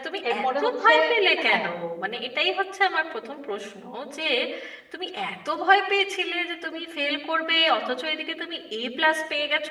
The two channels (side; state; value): both; identical; correlation 1.00